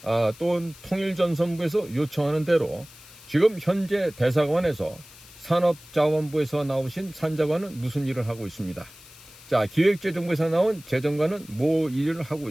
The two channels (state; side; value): noise; left; hiss, 21 dB below the sound